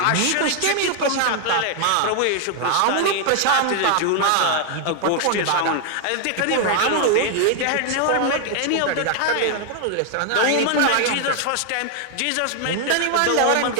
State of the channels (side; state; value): both; different; correlation 0.00